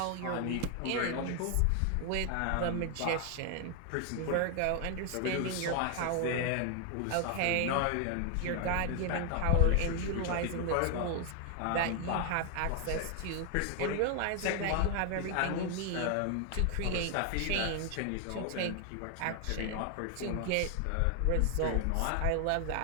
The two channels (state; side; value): different; both; correlation 0.00